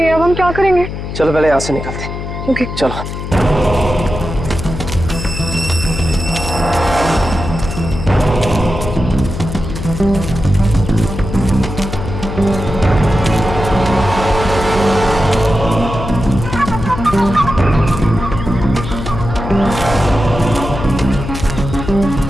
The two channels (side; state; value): left; noise; hum, 7 dB below the sound